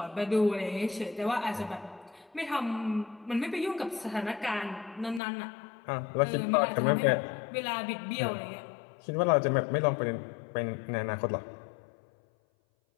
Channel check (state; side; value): drops out; right; at 5.2 s